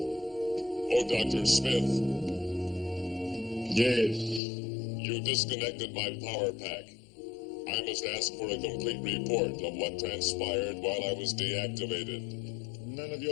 Oh, Dr. Smith, Yes. you disconnected my power pack. I must ask for a complete report of what transpired while I was deactivated. None of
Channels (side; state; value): right; drops out; at 4.4 s